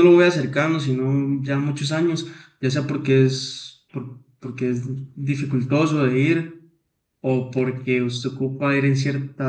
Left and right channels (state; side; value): identical; both; correlation 1.00